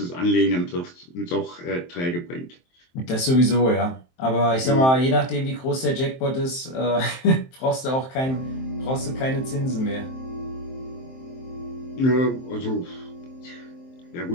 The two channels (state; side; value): late; right; 23 ms